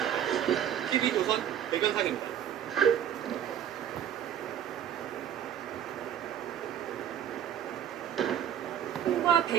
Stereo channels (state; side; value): quieter; left; 9.7 dB